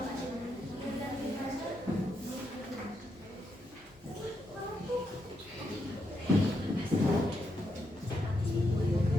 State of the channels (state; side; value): noise; right; hum, 26 dB below the sound